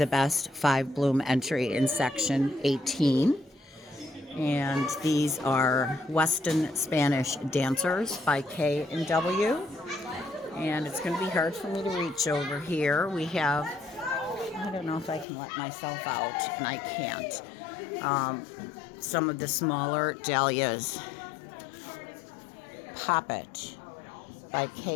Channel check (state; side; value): drops out; right; at 15.2 s